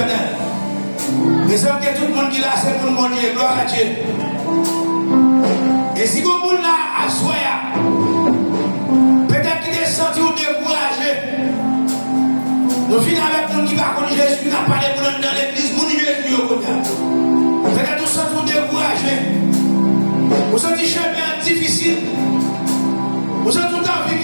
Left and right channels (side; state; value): both; inverted; correlation -1.00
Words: Mais c'est que tout le monde qui l'a, c'est pour mon Dieu. Gloire à Dieu. Et si vous avez là, à soyez. Peut-être qu'il est senti ou découragé. Nous finissons avec nous qui va connaître Jésus, qui n'a pas les gens dans l'église, nous Jésus au côté. Peut-être nous sommes découragé. Vous sentez chemin difficile. Vous avez tout envie de